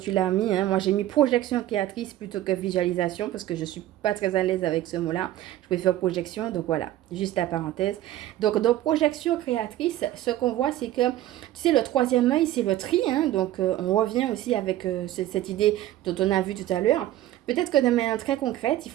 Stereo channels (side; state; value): left; quieter; 13.9 dB